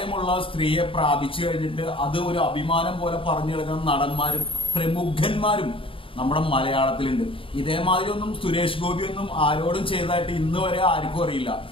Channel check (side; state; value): right; late; 0.26 ms